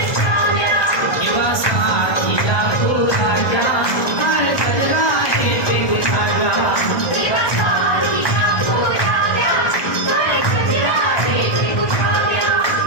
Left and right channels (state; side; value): late; right; 1.6 ms